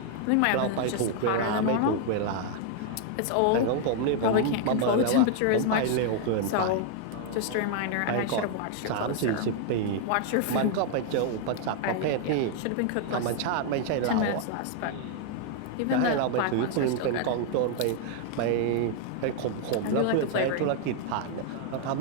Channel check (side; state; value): both; different; correlation 0.00